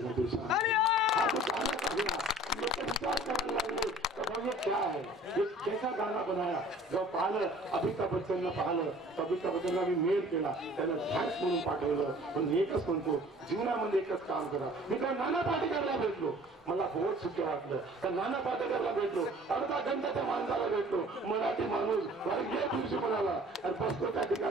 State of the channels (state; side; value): normal; both; correlation 0.49